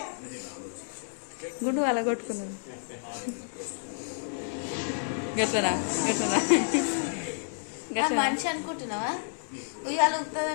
గుండు వాళ్ళ కొట్టుకున్నాను గట్లనా గట్లనా మనిషి అనుకుంటున్నావా ఉయ్యాల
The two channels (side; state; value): right; silent; digital silence